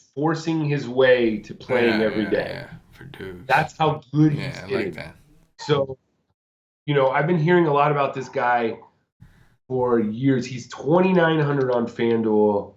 forcing his way to playing every day. Verdugo. That's how good he's getting. Like that. So, I've been hearing a lot about this guy for years. He's 2,900 on FanDuel.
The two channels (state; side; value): identical; both; correlation 1.00